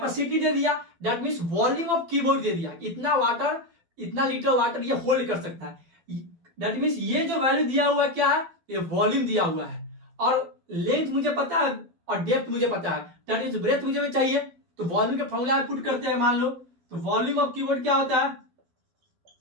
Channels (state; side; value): late; left; 12 ms